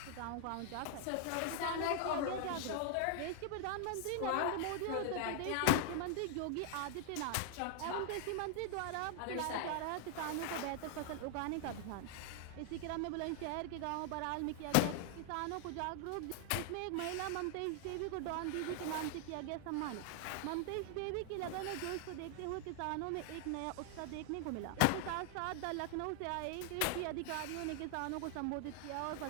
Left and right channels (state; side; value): different; both; correlation 0.00